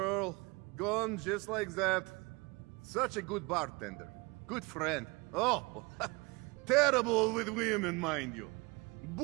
Gone just like that. Such a good bartender. Good friend. Oh, terrible with women, mind you.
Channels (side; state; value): left; quieter; 25.9 dB